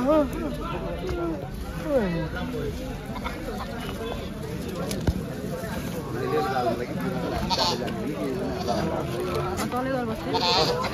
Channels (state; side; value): identical; both; correlation 1.00